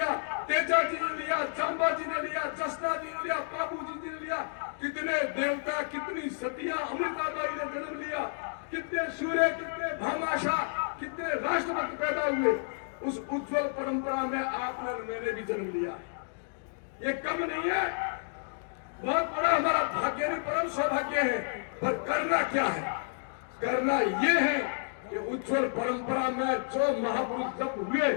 तेजा जी ने लिया, चांबा जी ने लिया, जसना जी ने लिया, बाबू जी ने लिया। कितने देवता, कितनी सतियां, अमृताबाई ने जन्म लिया, कितने सूर्य, कितने भामाशाह, कितने राष्ट्रभक्त पैदा हुए। उस उज्जवल परंपरा में आपने, मैंने भी जन्म लिया। ये कम नहीं है, बहुत बड़ा हमारा भाग्य नहीं, परम सौभाग्य है। पर करना क्या है? करना ये है कि उज्जवल परंपरा में जो महापुरुष जब हुए,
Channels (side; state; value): right; silent; digital silence